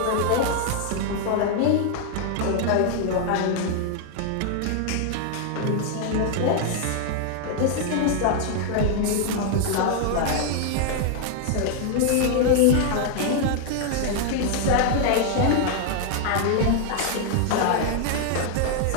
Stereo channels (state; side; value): different; both; correlation 0.00